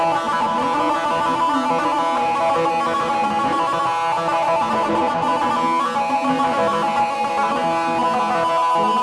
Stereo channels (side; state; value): both; identical; correlation 1.00